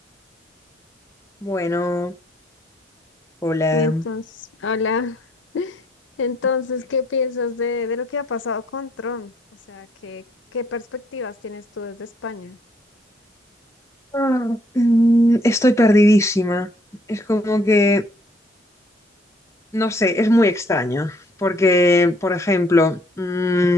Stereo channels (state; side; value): normal; both; correlation 0.66